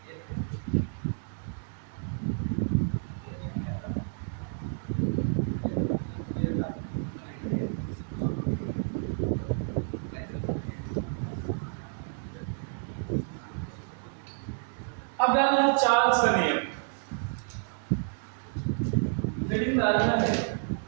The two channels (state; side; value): silent; left; 56 dB below the other